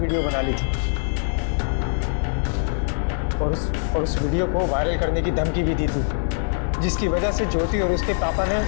बना ली थी और उस वीडियो को वायरल करने की धमकी भी दी थी, जिसकी वजह से ज्योति और उसके पापा ने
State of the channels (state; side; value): silent; right; 63 dB below the other